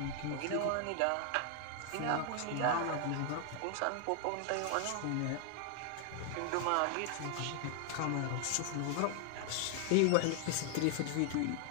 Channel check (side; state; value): both; different; correlation 0.00